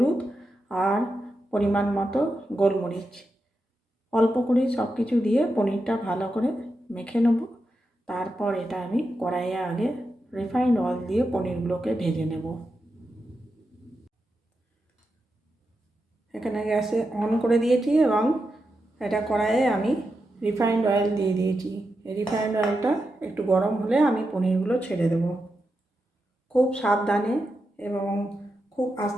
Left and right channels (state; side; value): normal; both; correlation 0.88